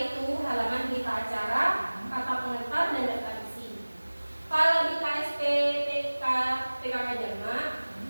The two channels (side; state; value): both; inverted; correlation -1.00